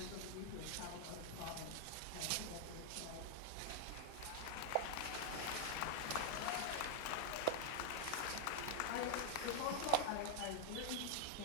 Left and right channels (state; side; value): different; both; correlation 0.00